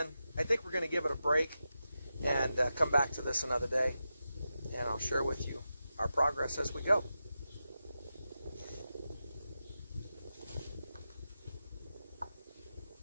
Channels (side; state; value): both; inverted; correlation -0.90